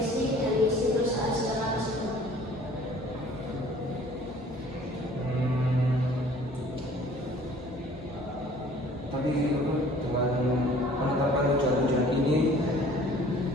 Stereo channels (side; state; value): both; normal; correlation 0.52